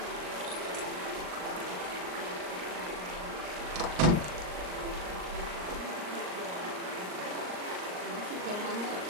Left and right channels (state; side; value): late; left; 39 ms